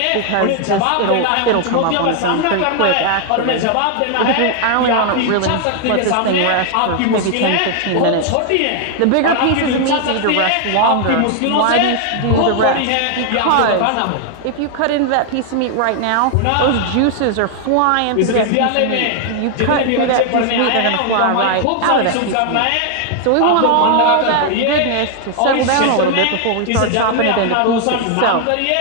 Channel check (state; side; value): different; both; correlation 0.00